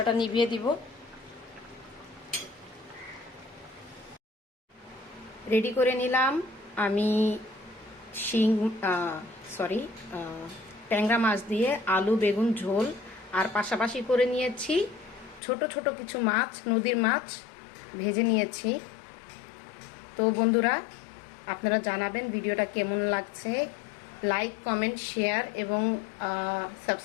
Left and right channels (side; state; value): right; drops out; at 15.4 s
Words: নিভিয়ে দিব। রেডি করে নিলাম আমি ট্যাংরা মাছ দিয়ে আলু বেগুন ঝোল, আর পাশাপাশি করে নিয়েছি ছোট ছোট কিছু মাছ, নদীর মাছ ভেজে নিয়েছি। তো বন্ধুরা, আপনারা জানাবেন ভিডিওটা কেমন লাগছে। লাইক, কমেন্ট, শেয়ার এবং